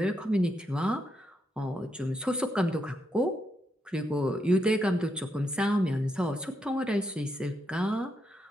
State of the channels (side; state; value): both; normal; correlation 0.81